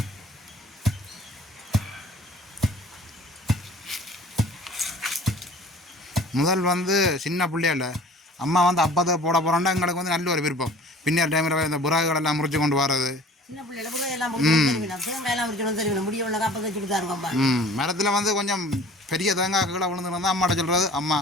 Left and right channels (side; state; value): both; normal; correlation 0.48